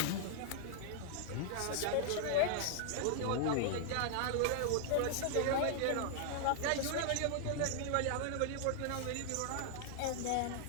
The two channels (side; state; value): both; different; correlation -0.01